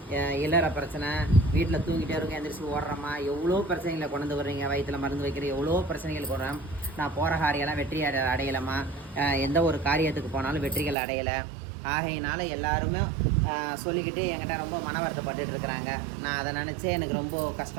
இல்லற பிரச்சனை, வீட்டில் தூங்கிட்டே இருக்க எந்திரிச்சு ஓடுறோமா, எவ்வளோ பிரச்சனைகளை கொண்டு வர்றீங்க. வயிற்றில் மருந்து வைக்கிற எவ்வளோ பிரச்சனைகள் கொடுறேன். நான் போகிற காரியெல்லாம் வெற்றி அடையலாமா, எந்த ஒரு காரியத்துக்கு போனாலும் வெற்றிகள் அடையலை. ஆகையினால எல்லாருமே சொல்லிக்கிட்டு என்கிட்ட ரொம்ப மன வருத்தப்பட்டு இருக்கிறாங்க. நான் அதை நினச்சே எனக்கு ரொம்ப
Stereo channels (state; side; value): drops out; left; at 11.0 s